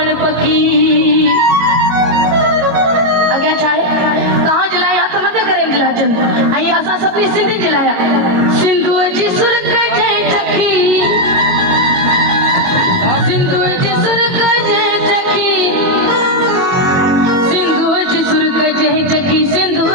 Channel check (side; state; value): left; late; 22 ms